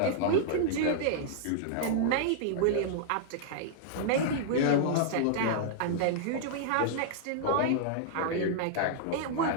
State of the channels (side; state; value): both; different; correlation -0.01